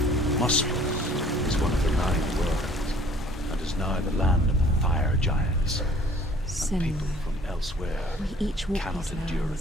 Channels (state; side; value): normal; both; correlation 0.54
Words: Muspel is one of the 9 worlds, and is now the land of the fire giants. And people from elsewhere We each walk cannot these endure a